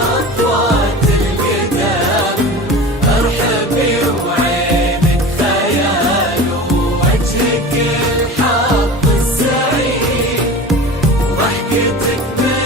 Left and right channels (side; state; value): both; normal; correlation 0.34